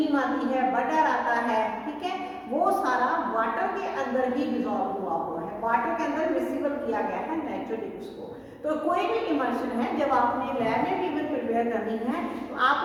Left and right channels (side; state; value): both; identical; correlation 1.00